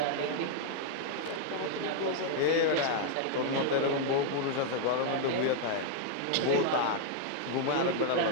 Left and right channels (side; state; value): both; different; correlation 0.00